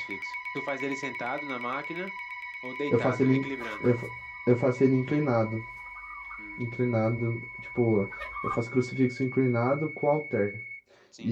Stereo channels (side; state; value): both; identical; correlation 1.00